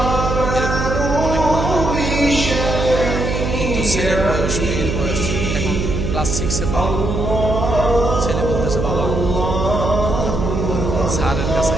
এরকম অনেক মা বাবা, কিন্তু ছেলের বয়স, মেয়ের বয়স এখন ক্লাস 6-এ পড়ে। ছেলে বলতেছে বাবা স্যারের কাছে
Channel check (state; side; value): noise; right; hum, 1 dB below the sound